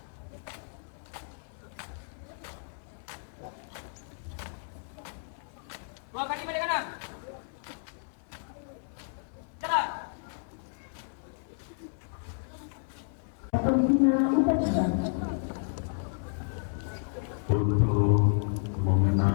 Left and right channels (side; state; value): right; silent; 57 dB below the other